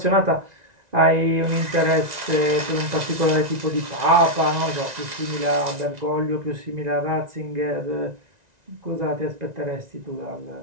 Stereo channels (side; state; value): left; late; 1.9 ms